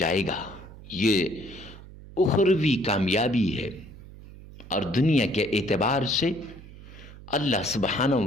گا۔ یہ اخروی کامیابی ہے، اور دنیا کے اعتبار سے اللہ سبحانہ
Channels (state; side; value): noise; right; hum, 17 dB below the sound